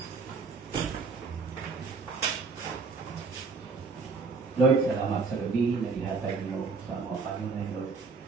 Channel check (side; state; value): left; quieter; 4.6 dB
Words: Lord, salamat sa gabi na ihatag mo sa mga Panginoon, Lord.